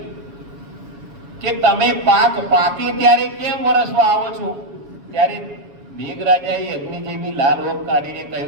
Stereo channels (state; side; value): late; left; 7.1 ms